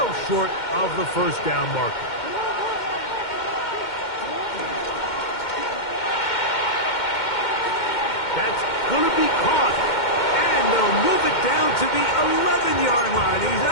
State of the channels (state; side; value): late; right; 2.1 ms